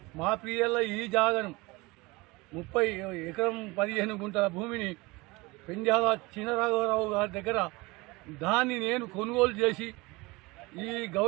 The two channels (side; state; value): left; quieter; 23.5 dB